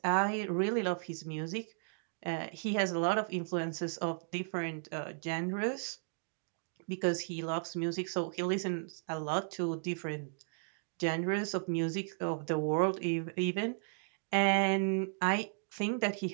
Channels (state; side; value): silent; left; digital silence